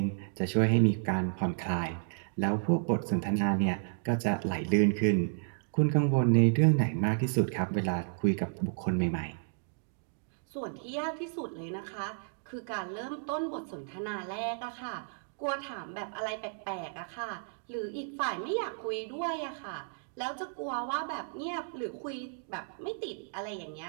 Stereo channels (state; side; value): silent; left; digital silence